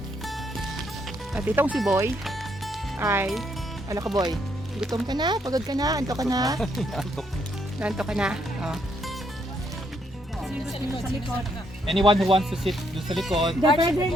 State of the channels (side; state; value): both; normal; correlation 0.74